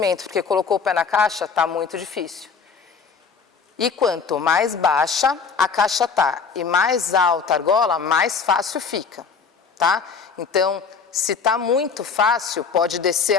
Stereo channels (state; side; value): quieter; right; 5.6 dB